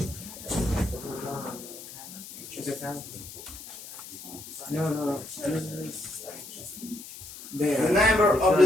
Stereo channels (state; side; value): noise; left; hiss, 14 dB below the sound